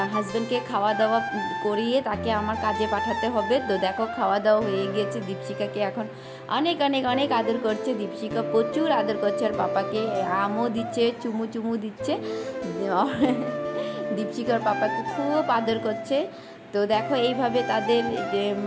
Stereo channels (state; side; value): identical; both; correlation 1.00